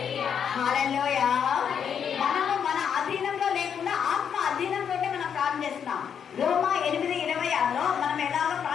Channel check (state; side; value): quieter; right; 7.7 dB